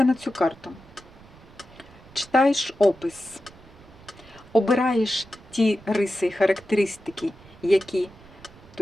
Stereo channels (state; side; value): noise; right; rumble, 23 dB below the sound